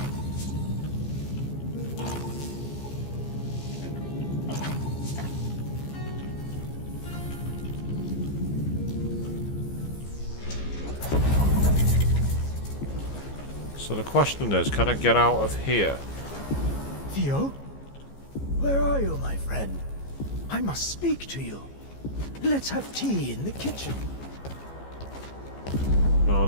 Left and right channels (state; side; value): late; right; 15 ms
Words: So the question is, can I get out of here? Theo? Where are you, my friend? I must speak to you. Let's have tea in the kitchen. No,